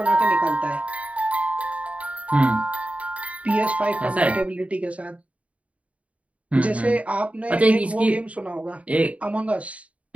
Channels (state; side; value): late; left; 0.066 ms